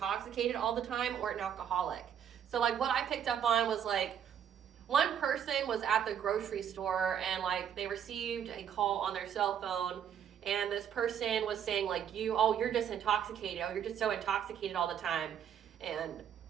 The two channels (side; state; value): left; quieter; 8.9 dB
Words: all the time or an alcoholic. So like what I picked up on was like, one person was at the grocery store and like they received a call on their cell phone, and this person was saying like you're just intoxicated, you're just so intoxicated all the time, and